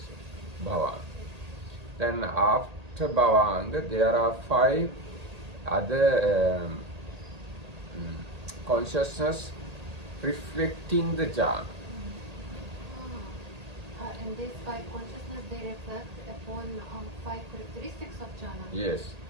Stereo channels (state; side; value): late; left; 1.8 ms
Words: Bhavanga. Then after bhavanga, there are 5 other consciousness reflecting the jhana. And these 5 consciousness, they reflect upon 5 characteristics of jhana. Yes,